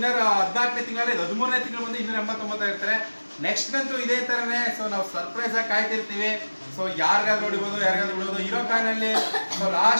14ನೇ ತಿಂಗಳಲ್ಲಿ 13ನೇ ತಿಂಗಳು ಬಂದು 289 ಆಗಿರ್ತಾರೆ. ನೆಕ್ಸ್ಟ್ ಅಂತೂ ಇದೇ ತರನೇ. ಸೊ ನಾವು ಸರ್ಪ್ರೈಸ್ ಆಗಿ ಕಾಯ್ತಿರ್ತೀವಿ. ಸೊ ಯಾರಿಗಾದ್ರೂ ಹೊಡಿಬೋದು, ಯಾರಿಗಾದ್ರೂ ಬಿಡೋದು. ಹೀರೋ ಕಾಯಿನಲ್ಲಿ ಸೊ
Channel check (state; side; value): inverted; both; correlation -1.00